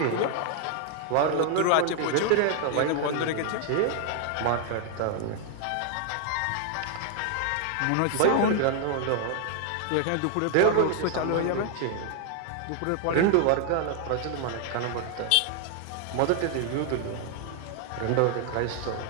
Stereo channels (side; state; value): both; different; correlation 0.00